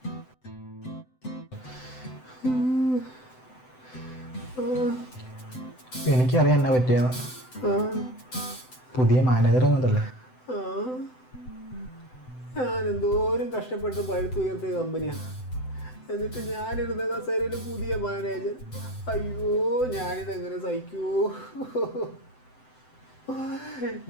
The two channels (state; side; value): late; right; 7.9 ms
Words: എനിക്കറിയാം എന്നാ പറ്റിയ പുതിയ മാനേജർ വന്നതല്ലേ. ഞാൻ എന്തോരം കഷ്ടപ്പെട്ട് പഴുത്തുയർത്തിയ കമ്പനിയാണ്. എന്നിട്ട് ഞാനിരുന്ന കസേരയിൽ പുതിയ മാനേജർ. അയ്യോ, ഞാനിതെങ്ങനെ സഹിക്കൂ?